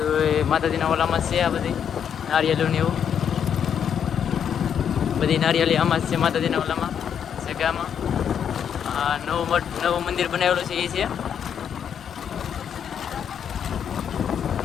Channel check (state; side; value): quieter; right; 8.3 dB